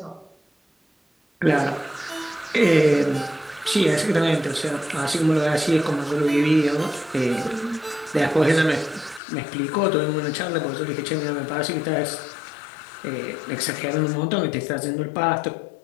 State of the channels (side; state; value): right; drops out; at 9.2 s